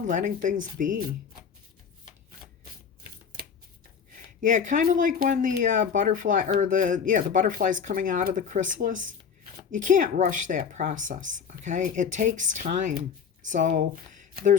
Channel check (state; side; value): quieter; right; 6.8 dB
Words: letting things be. Yeah, kind of like when the butterfly, or the butterfly's coming out of the chrysalis. You can't rush that process, okay? It takes time. So